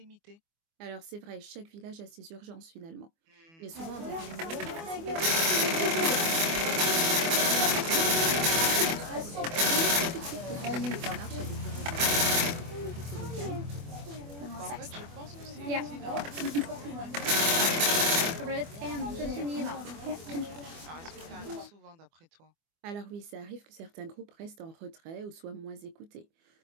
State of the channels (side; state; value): left; late; 24 ms